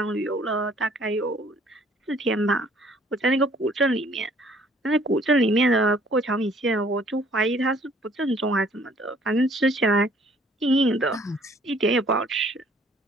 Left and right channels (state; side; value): normal; both; correlation 0.58